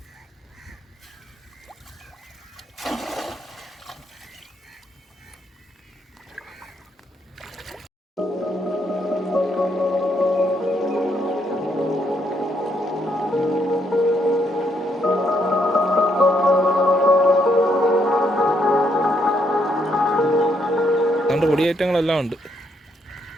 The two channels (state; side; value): normal; both; correlation 0.74